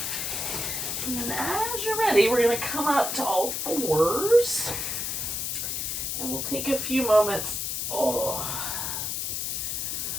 And then as you're ready, we're going to come up to all fours. And we'll take a few moments to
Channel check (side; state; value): left; noise; hiss, 2 dB below the sound